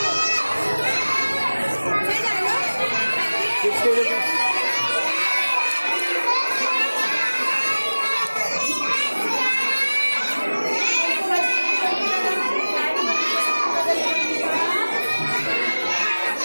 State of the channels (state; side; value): inverted; both; correlation -1.00